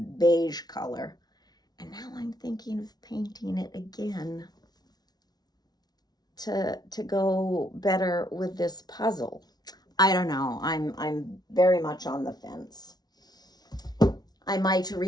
color. And now I'm thinking of painting it again to go better with this puzzle. I don't know. I'm very much on the fence. I might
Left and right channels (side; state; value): right; late; 0.19 ms